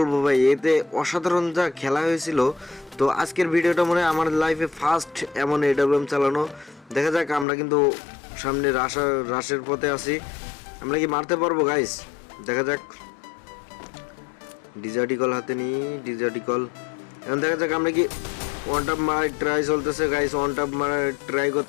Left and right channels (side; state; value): right; drops out; at 7.5 s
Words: ভাই, এতে অসাধারণ যা খেলা হয়েছিল। তো আজকের ভিডিওটা মনে হয় আমার লাইফে ফার্স্ট এমন এডাব্লিউএম চালানো। দেখা যাক, আমরা কিন্তু সামনে রাশের পথে আছি, আমরা কি মারতে পারবো গাইস? দেখা যাক। ডিজার্টিকল হাতে নিই, ডিজার্টিকল। এখন দেখা যাক আমরা কি ওয়ান টাপ মারার ট্রাই চলতেছে গাইস। ওয়ান টাপ মারার ট্রাই